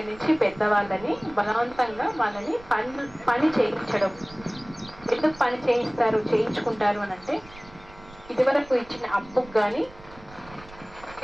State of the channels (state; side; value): noise; right; rumble, 21 dB below the sound